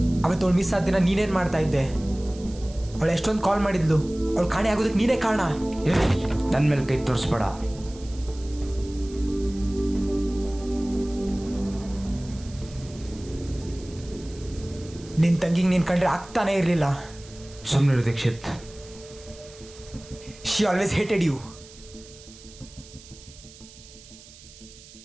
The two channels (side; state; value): right; noise; hiss, 20 dB below the sound